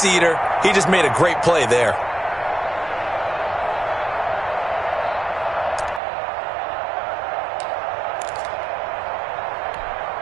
eater, he just made a great play there.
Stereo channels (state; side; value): drops out; left; at 6.0 s